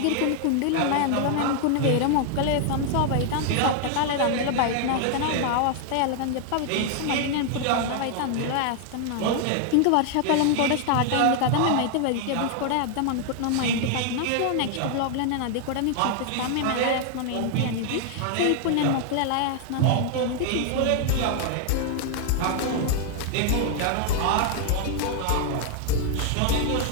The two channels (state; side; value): different; both; correlation 0.00